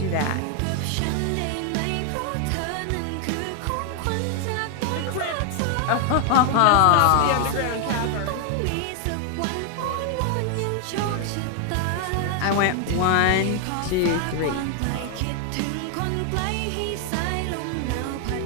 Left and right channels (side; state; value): both; different; correlation 0.00